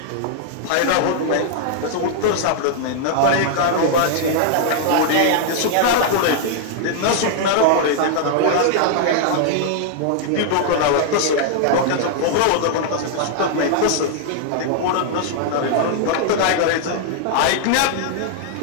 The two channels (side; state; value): both; different; correlation -0.01